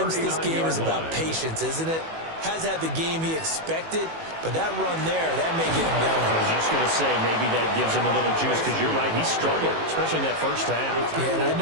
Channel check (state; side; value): late; left; 18 ms